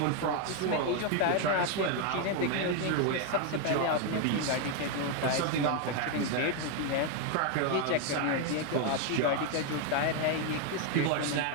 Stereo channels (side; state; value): both; different; correlation 0.01